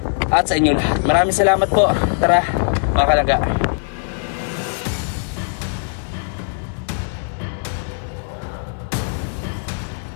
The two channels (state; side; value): silent; right; digital silence